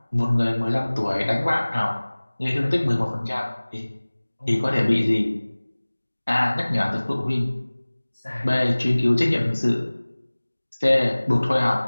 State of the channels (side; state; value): both; inverted; correlation -1.00